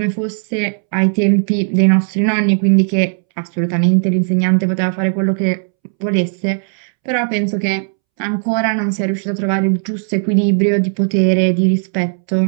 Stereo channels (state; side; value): silent; left; 68 dB below the other